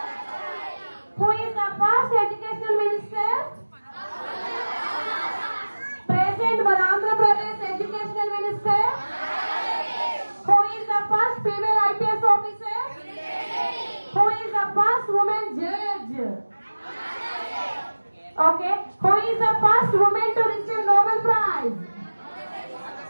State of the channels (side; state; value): both; inverted; correlation -1.00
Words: Who is the first Educational Minister? Present for Andhra Pradesh Educational Minister? Who is the first female IPS officer? Who is the first woman judge? Okay. Who is the first woman to receive Nobel Prize?